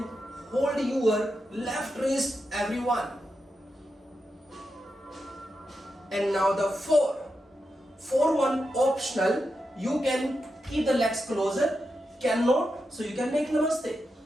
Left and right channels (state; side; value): normal; both; correlation 0.87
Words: hold your left wrist, everyone. And now the 4. 4-1 optional. You can keep the legs closer. Cannot, so you can make namaste.